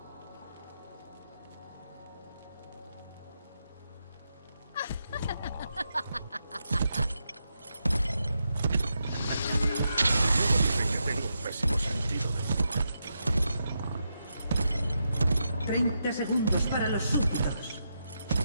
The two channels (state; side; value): inverted; both; correlation -0.84